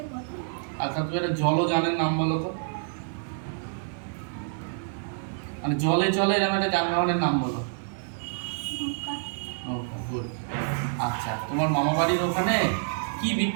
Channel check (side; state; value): left; silent; digital silence